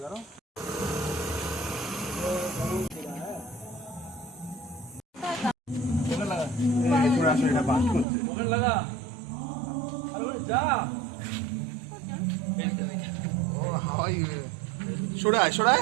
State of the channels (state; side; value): drops out; left; at 8.1 s